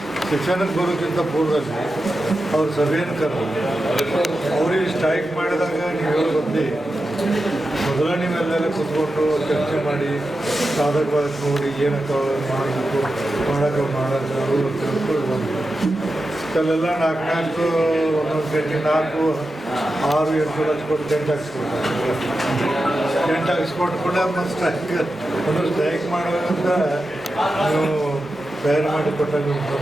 ಶಿಕ್ಷಣಕ್ಕೆ ಬರೋಕ್ಕಿಂತ ಪೂರ್ವದಲ್ಲಿ ಅವ್ರ ಸಭೆಯನ್ನು ಕರೆದು ಅವ್ರಿಗೆ ಸ್ಟ್ರೈಕ್ ಮಾಡಿದಾಗ ನೀವು ಬಂದು ಮೊದಲ ನೀವೆಲ್ಲೆಲ್ಲ ಕೂತ್ಕೊಂಡು ಚರ್ಚೆ ಮಾಡಿ ಸಾಧಕವಾಗಿ ನೋಡಿ ಏನಕ್ಕೆ ಮಾಡಬೇಕು, ಮಾಡೋದು ಅಂತ ತಿಳ್ಕೊಂಡು ಬಂದು ಅಲ್ಲೆಲ್ಲ 4 ಒಂದೊಂದು ಗಂಟೆ 4, 6, 8 ಲಕ್ಷ ಕೊಟ್ಟು ಟೆಂಟ್ ಹಾಕ್ಸ್ಕೊಟ್ಟು ಕೂಡ ಮತ್ತು ಸ್ಟ್ರೈಕ್ ಮಾಡುವಂತ ನೀವು ತಯಾರು ಮಾಡಿ ಕೊಟ್ಟಾಗ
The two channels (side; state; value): left; noise; hum, 28 dB below the sound